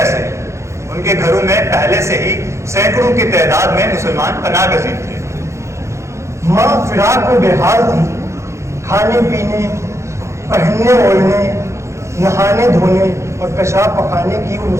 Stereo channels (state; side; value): late; left; 0.14 ms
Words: उनके घरों में पहले से ही सैकड़ों की तादाद में मुसलमान पनाह गजीर थे। माँ फिराक में बेहाल थी, खाने पीने, पहनने ओढ़ने, नहाने धोने और पेशाब पखाने की वो